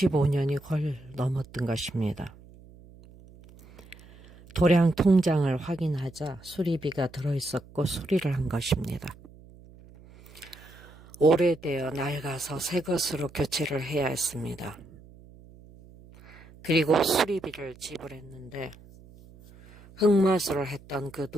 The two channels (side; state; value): right; noise; hum, 22 dB below the sound